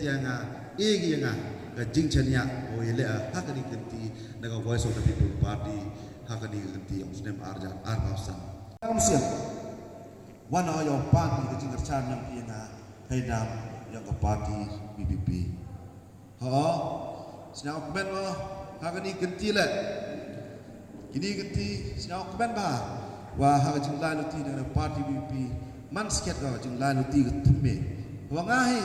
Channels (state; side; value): identical; both; correlation 1.00